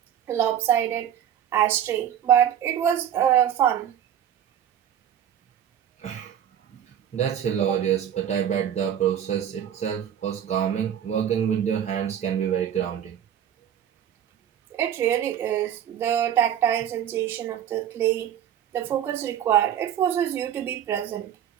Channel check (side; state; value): left; quieter; 9.9 dB